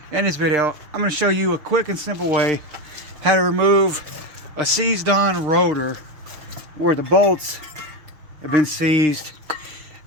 In this video, I'm going to show you a quick and simple way how to remove a seized on rotor where the bolts have been seized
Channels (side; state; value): left; late; 6.5 ms